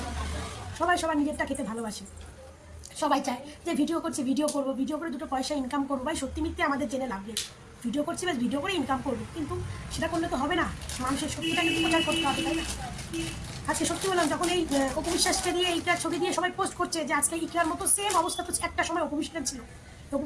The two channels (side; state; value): both; identical; correlation 1.00